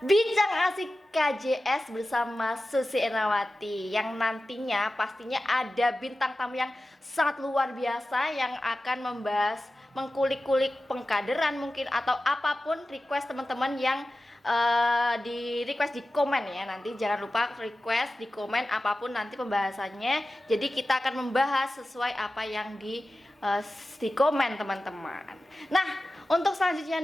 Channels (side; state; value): both; normal; correlation 0.95